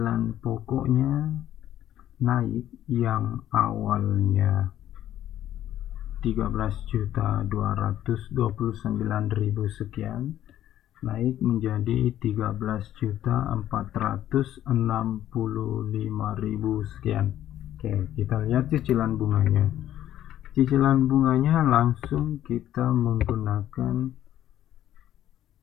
pokoknya naik, yang awalnya 13.229.000 sekian naik menjadi 13.465.000 sekian. Oke, kita lihat cicilan bunganya. Cicilan bunganya langsung kita menggunakan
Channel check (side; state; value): right; quieter; 12.1 dB